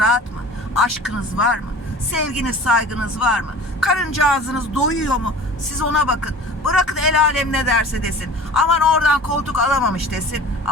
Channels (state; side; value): normal; both; correlation 0.41